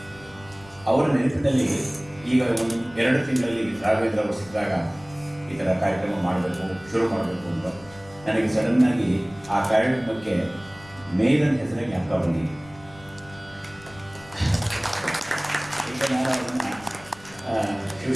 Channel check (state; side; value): noise; left; rumble, 22 dB below the sound